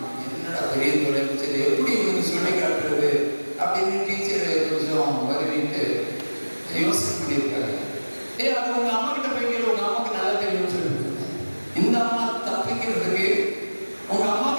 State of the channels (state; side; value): inverted; both; correlation -1.00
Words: என்னடா பெரிய தொலைச்சது, எப்படி இவனுக்கு சொல்லி காட்டுறது அப்படின்னு டீச்சர் கொஞ்சம் வருவிட்டு யோசனை பண்ணியிருக்காரு. அது உங்க அம்மா கிட்ட போய் கேள்வி, உங்க அம்மாவுக்கு நல்லா தெரியும்னு சொல்லிட்டு. இந்த அம்மா தப்பிக்கிறதுக்கு உங்க